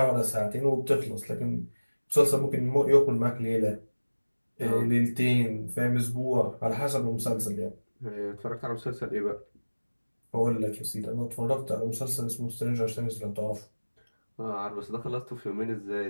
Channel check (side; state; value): both; inverted; correlation -1.00